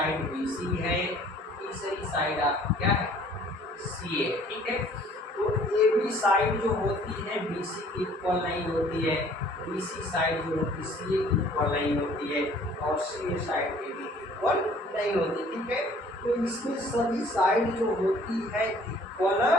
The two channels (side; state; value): both; normal; correlation 0.55